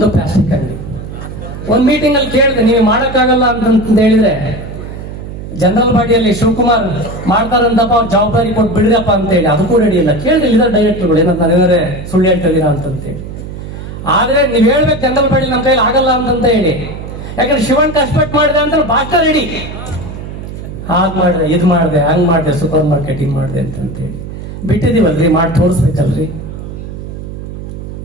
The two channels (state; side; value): noise; right; hum, 10 dB below the sound